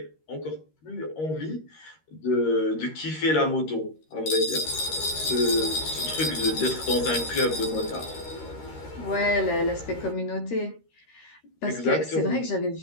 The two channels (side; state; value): right; late; 13 ms